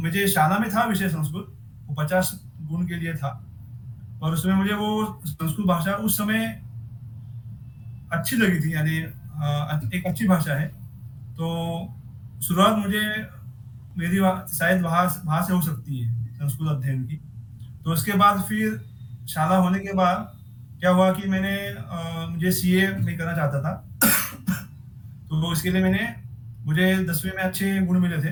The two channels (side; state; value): both; identical; correlation 1.00